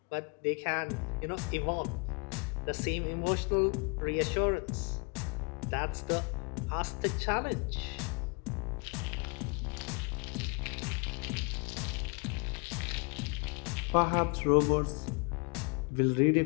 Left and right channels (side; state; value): right; quieter; 33.5 dB